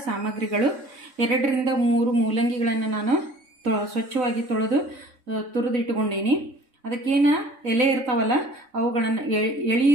ಸಾಮಗ್ರಿಗಳು 2 ರಿಂದ 3 ಮೂಲಂಗಿಗಳನ್ನು ನಾನು ಸ್ವಚ್ಛವಾಗಿ ತೊಳೆದು ತುರಿದಿಟ್ಟುಕೊಂಡೀನಿ. ಅದಕ್ಕೇನು ಎಲೆ ಇರ್ತಾವಲ್ಲ ಅವುಗಳನ್ನು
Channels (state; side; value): late; left; 3.6 ms